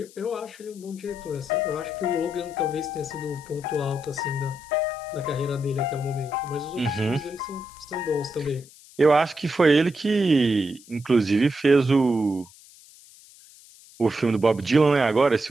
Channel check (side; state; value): left; noise; hiss, 23 dB below the sound